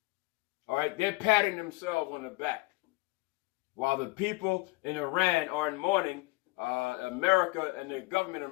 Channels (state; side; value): quieter; right; 23.5 dB